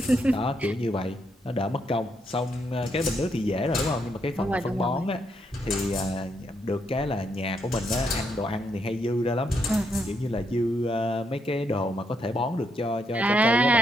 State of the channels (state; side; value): normal; both; correlation 0.77